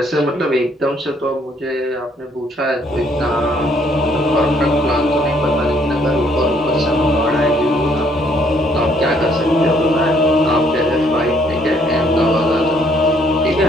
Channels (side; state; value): both; normal; correlation 0.66